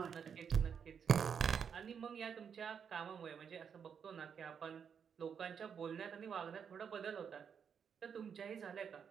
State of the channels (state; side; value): quieter; left; 7.2 dB